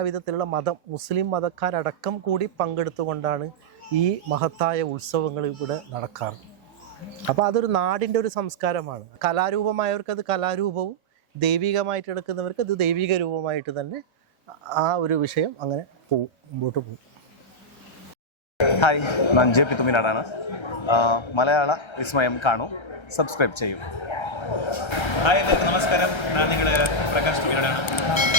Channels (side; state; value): right; late; 1.3 ms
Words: മുസ്ലിം മതക്കാരടക്കം കൂടി പങ്കെടുത്തുകൊണ്ടാണ് ഈ മഹത്തായ ഉത്സവങ്ങൾ ഇവിടെ നടക്കാറ്. അപ്പോൾ അതൊരു നാടിൻ്റെ ഒരു സംസ്കാരമാണ്. കലാരൂപമായവർക്ക് അത് കലാരൂപവും, ദൈവികമായിട്ട് എടുക്കുന്നവർക്ക് അത് ദൈവിക രൂപമായിട്ട് തന്നെ ആ ഒരു വിഷയം അങ്ങനെ പോവും, മുമ്പോട്ട് പോകും. ഹായ്, ഞാൻ ജെ പി തുമിനാടാണ്. മലയാള വിസ്മയം കാണൂ, സബ്സ്ക്രൈബ് ചെയ്യൂ. ഹായ്, എല്ലാവർക്കും നമസ്കാരം. ഞാൻ നിങ്ങളുടെ പ്രകാശ് തുമിനാടാണ്.